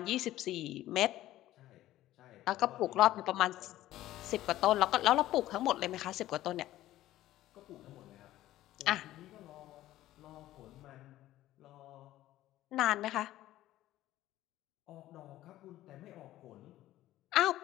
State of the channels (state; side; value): quieter; right; 14.7 dB